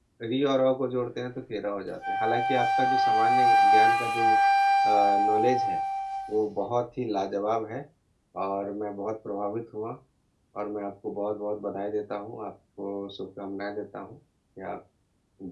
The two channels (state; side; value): identical; both; correlation 1.00